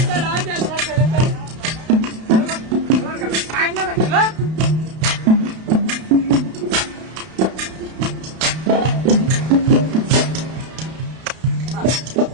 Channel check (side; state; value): left; late; 32 ms